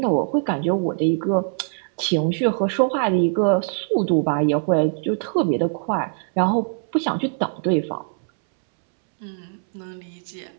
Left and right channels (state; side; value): silent; left; 64 dB below the other